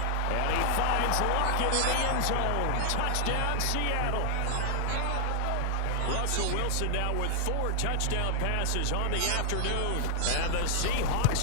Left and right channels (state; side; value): different; both; correlation 0.00